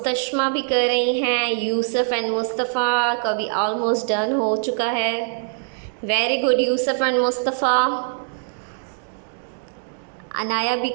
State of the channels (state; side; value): silent; left; digital silence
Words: भी कर रही हैं, यूसुफ एंड मुस्तफ़ा का भी ऑलमोस्ट डन हो चुका है। Very good Yusuf and Mustafa. Anaya भी